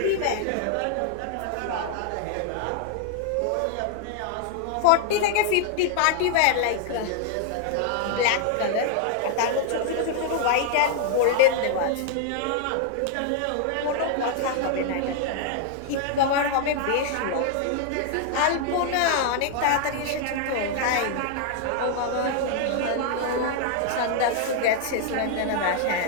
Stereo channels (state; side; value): different; both; correlation 0.00